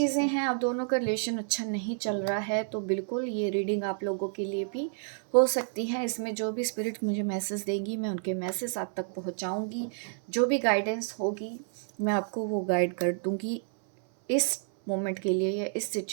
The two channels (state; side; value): silent; left; 58 dB below the other